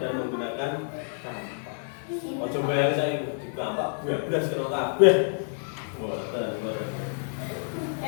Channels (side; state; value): right; silent; digital silence